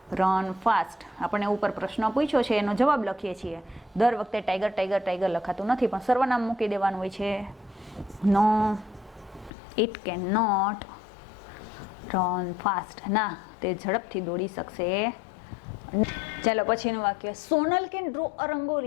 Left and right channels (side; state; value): right; drops out; at 9.5 s